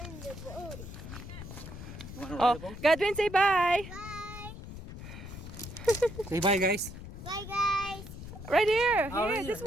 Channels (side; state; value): left; noise; rumble, 12 dB below the sound